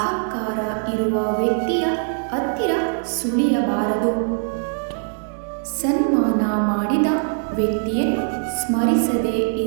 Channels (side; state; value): left; silent; 64 dB below the other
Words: ಇರುವ ವ್ಯಕ್ತಿಯ ಹತ್ತಿರ ಸುಳಿಯಬಾರದು. ಸನ್ಮಾನ ಮಾಡಿದ ವ್ಯಕ್ತಿಯನ್ನು ಸ್ಮರಿಸದೇ